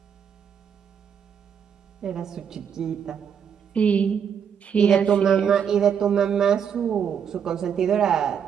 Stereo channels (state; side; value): quieter; left; 7.7 dB